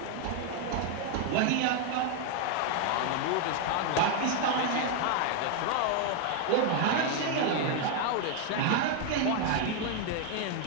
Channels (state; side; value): different; both; correlation 0.01